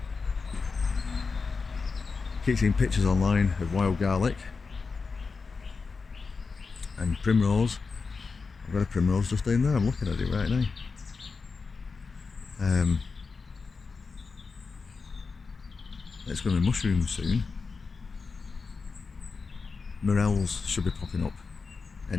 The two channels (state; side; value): quieter; right; 4.7 dB